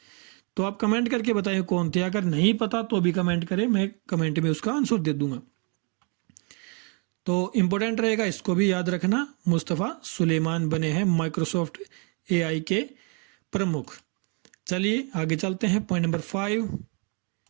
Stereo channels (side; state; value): left; quieter; 34.9 dB